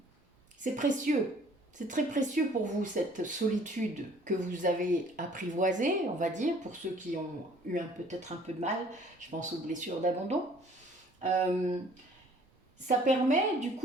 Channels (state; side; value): normal; both; correlation 0.56